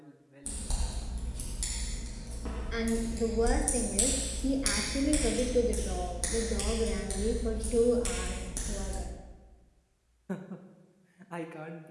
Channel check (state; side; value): identical; both; correlation 1.00